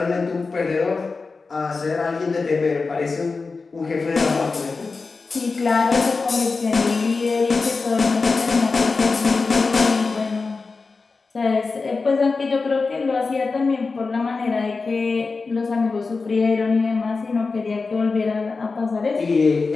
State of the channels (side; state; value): right; quieter; 4.2 dB